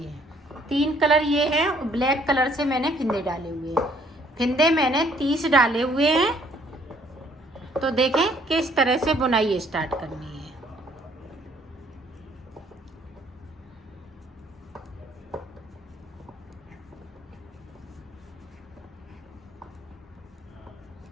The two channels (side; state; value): both; normal; correlation 0.63